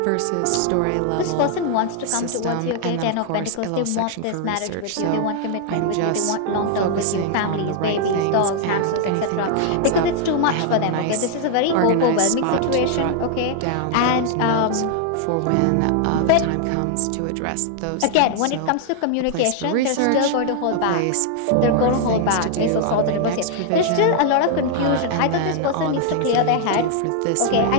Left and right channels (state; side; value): different; both; correlation 0.00